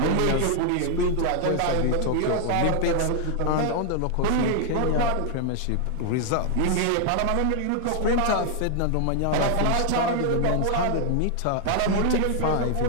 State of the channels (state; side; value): different; both; correlation 0.00